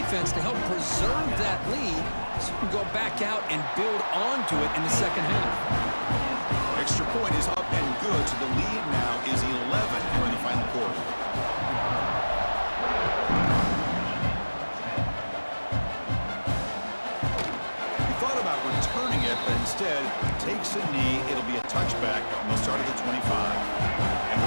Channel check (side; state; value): both; inverted; correlation -1.00